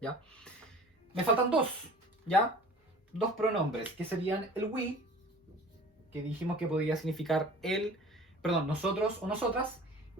¿ya? Me faltan dos, ¿ya? Dos pronombres, que serían el we, que dijimos que podría significar nosotros o nosotras,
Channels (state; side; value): normal; both; correlation 0.43